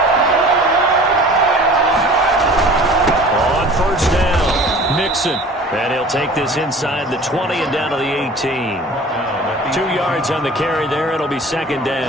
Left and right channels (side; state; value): both; normal; correlation 0.44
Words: On 1st down, Mixon. And he'll take this inside the 20 and down to the 18. 2 yards on the carry there. It'll be 2nd